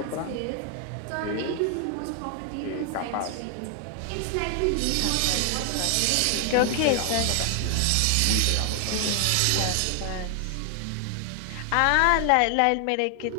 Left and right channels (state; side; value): different; both; correlation 0.00